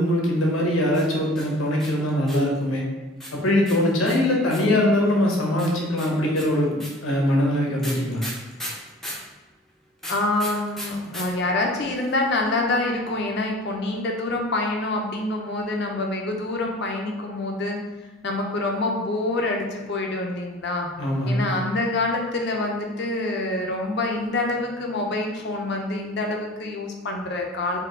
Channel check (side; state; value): both; normal; correlation 0.44